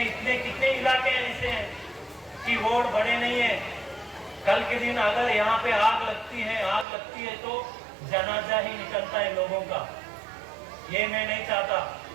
कितने इलाके ऐसे हैं कि रोड बड़े नहीं है। कल के दिन अगर यहाँ पे आग लगती है तो जनाजा ही निकलता है लोगों का। ये मैं नहीं चाहता।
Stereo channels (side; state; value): left; drops out; at 6.9 s